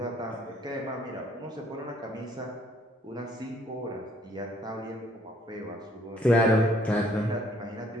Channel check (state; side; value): normal; both; correlation 0.63